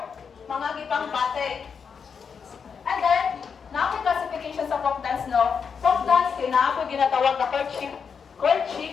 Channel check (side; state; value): right; quieter; 6.3 dB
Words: mga gipang bate. And then, na classification sa folk dance, no? Folk dance, kinapoy ginatawag na